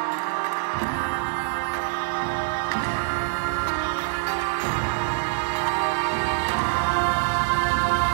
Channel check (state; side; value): silent; left; digital silence